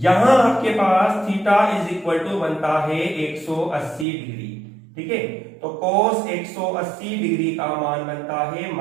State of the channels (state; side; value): drops out; left; at 4.0 s